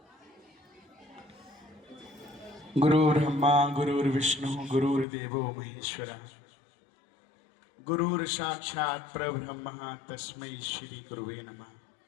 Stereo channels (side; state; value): right; drops out; at 5.1 s